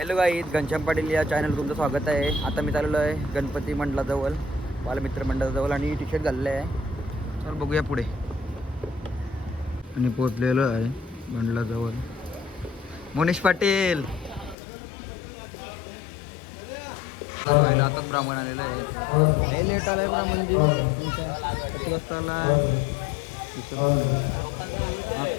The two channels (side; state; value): right; drops out; at 14.6 s